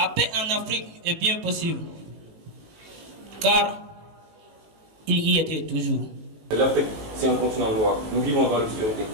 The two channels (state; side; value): late; left; 19 ms